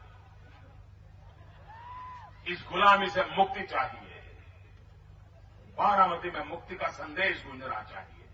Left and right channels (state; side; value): identical; both; correlation 1.00